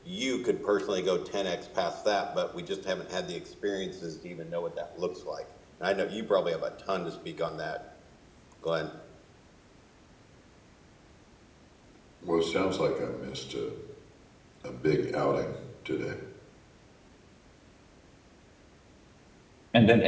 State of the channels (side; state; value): both; identical; correlation 1.00